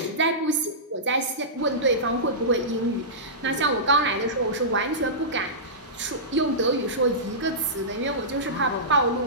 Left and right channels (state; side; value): normal; both; correlation -0.18